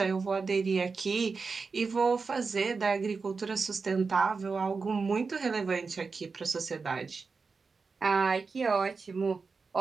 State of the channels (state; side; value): quieter; left; 4.7 dB